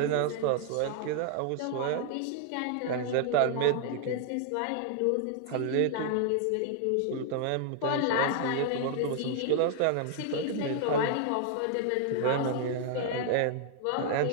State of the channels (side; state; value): both; different; correlation 0.00